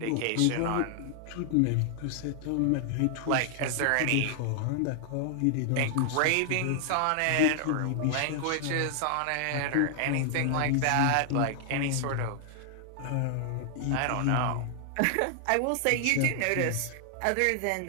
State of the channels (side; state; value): both; different; correlation 0.00